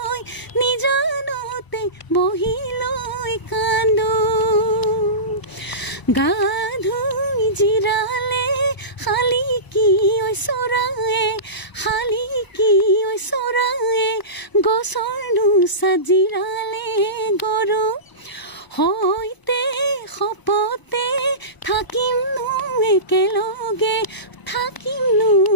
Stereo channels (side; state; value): right; late; 1.0 ms